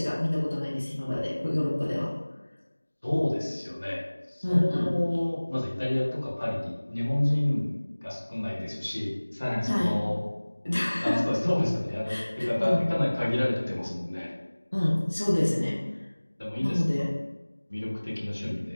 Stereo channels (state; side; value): inverted; both; correlation -1.00